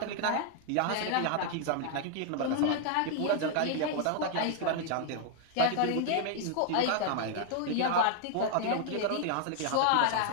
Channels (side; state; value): both; different; correlation 0.00